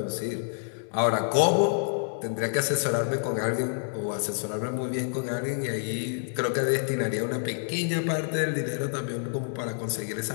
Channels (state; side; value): silent; right; 59 dB below the other